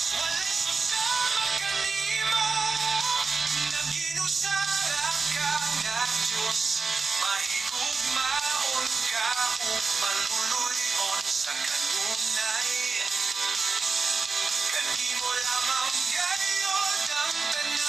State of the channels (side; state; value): left; quieter; 4.5 dB